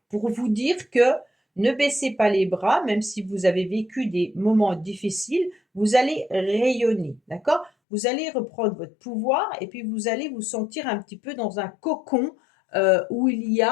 pour vous dire que ne baissez pas les bras, même si vous avez vécu des moments difficiles, vous allez rayonner, d'accord? Vous allez reprendre votre pouvoir et puis vous allez vous sentir un petit peu dans un cocon où il y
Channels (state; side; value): drops out; right; at 7.7 s